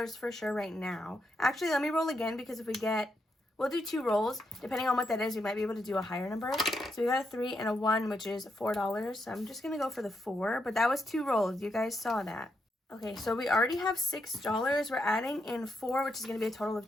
for sure right now. Actually, let me roll again, because if we get, we'll do 2 rolls. Depending on what that is, we might be able to do a higher number. So we got a 3 and a 1, which is $4. So I'm just going to go for the 4, but that was 2 rolls. You guys saw that. Okay, so we already have $6. We're adding in 4, which is going to be a total of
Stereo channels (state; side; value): normal; both; correlation 0.81